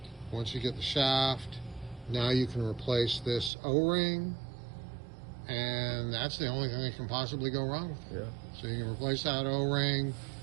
Once you get the shaft, now you can replace this O-ring, and that's the only thing that can possibly go wrong with it. Yeah. So you can replace that O-ring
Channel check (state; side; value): drops out; left; at 3.5 s